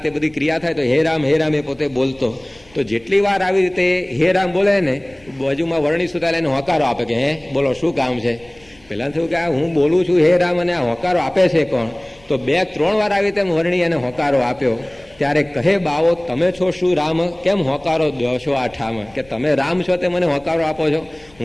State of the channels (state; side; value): noise; left; rumble, 30 dB below the sound